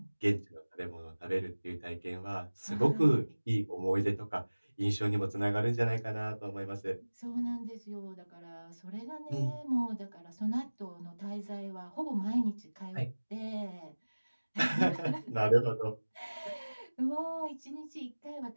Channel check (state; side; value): inverted; both; correlation -1.00